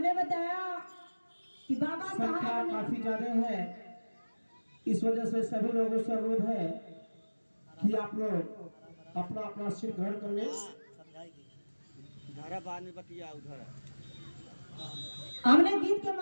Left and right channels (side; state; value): both; inverted; correlation -1.00